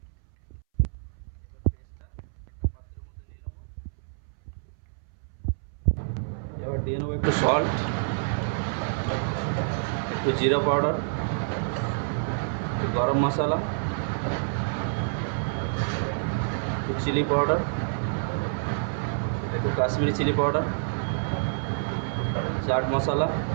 এবার পেস্টটা একটা পাত্রের মধ্যে নিয়ে নেব। এবার দিয়ে নেবো একটু সল্ট, একটু জিরা পাউডার, একটু গরম মশলা, একটু চিলি পাউডার, একটু কাশ্মীরি চিলি পাউডার, চাট মশলা,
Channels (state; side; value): silent; left; 60 dB below the other